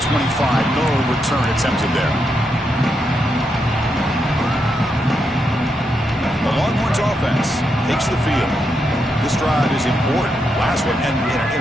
No return attempted there. The Longhorns offense takes the field. This drive is important. Last one and an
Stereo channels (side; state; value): both; normal; correlation 0.82